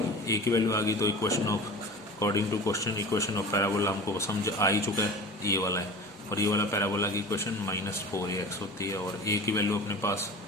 ए की वैल्यू आ गई तो equation of, according to question, equation of parabola हमको समझ आ ही चुका है, ये वाला है। और ये वाला पैराबोला की इक्वेशन -4ax होती है और ए की वैल्यू अपने पास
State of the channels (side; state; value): both; normal; correlation 0.36